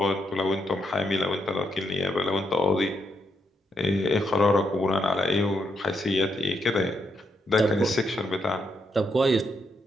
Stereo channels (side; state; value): both; normal; correlation 0.79